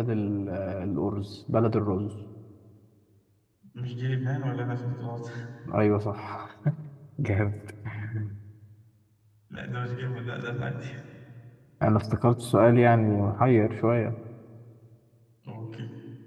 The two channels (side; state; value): both; identical; correlation 1.00